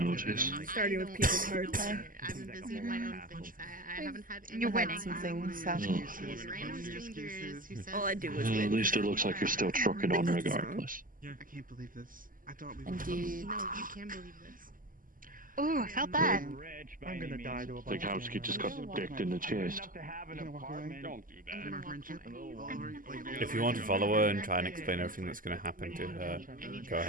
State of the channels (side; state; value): left; late; 0.40 ms